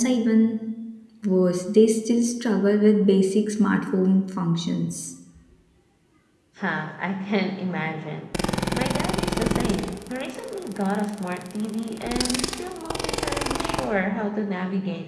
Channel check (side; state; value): both; identical; correlation 1.00